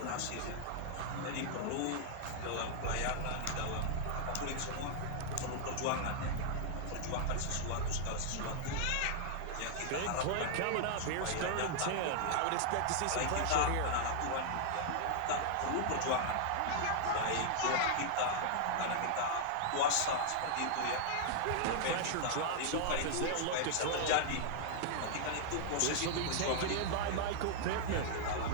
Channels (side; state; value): both; different; correlation 0.00